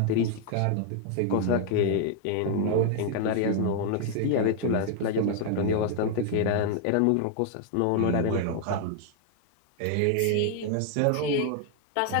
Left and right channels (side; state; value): both; different; correlation 0.00